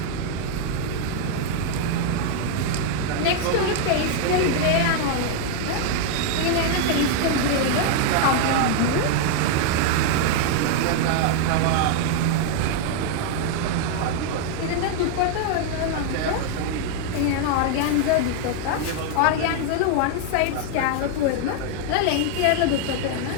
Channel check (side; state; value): both; different; correlation 0.00